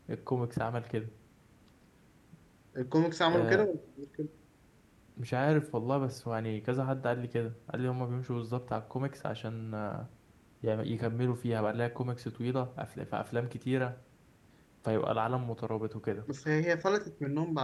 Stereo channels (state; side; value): identical; both; correlation 1.00